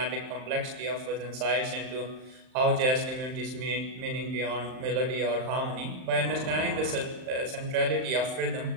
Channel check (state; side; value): late; left; 39 ms